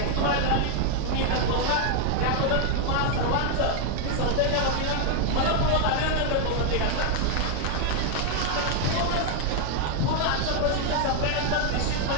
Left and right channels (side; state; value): both; different; correlation 0.00